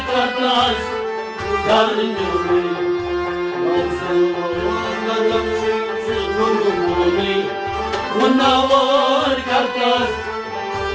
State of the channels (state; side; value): identical; both; correlation 1.00